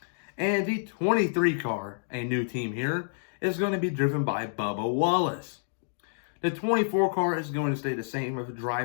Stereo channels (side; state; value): right; silent; digital silence